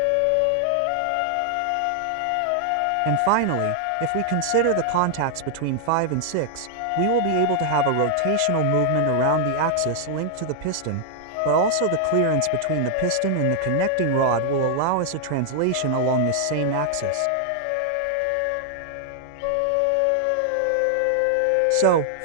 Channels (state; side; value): different; both; correlation 0.00